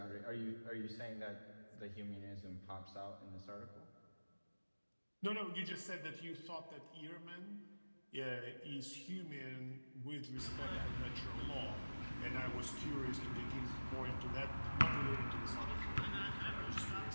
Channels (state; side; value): inverted; both; correlation -1.00